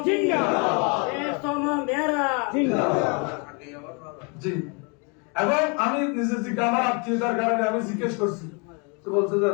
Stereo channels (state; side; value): quieter; right; 33.8 dB